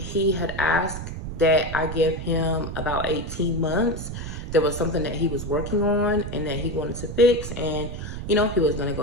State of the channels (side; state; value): right; noise; rumble, 7 dB below the sound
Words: had asked that I give him about 18 months. There was something that he was working on and that he wanted to fix. And, you know, he was going to go